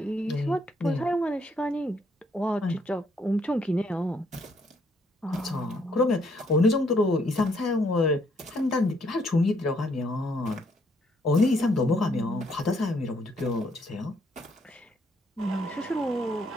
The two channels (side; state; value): both; normal; correlation 0.70